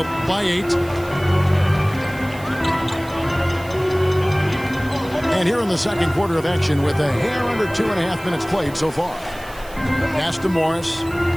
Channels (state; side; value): noise; right; hiss, 21 dB below the sound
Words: by 8. And here in the second quarter of action with a hair under 2.5 minutes played so far. Pass to Morris.